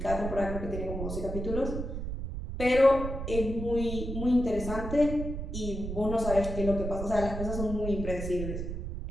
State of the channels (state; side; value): noise; right; rumble, 5 dB below the sound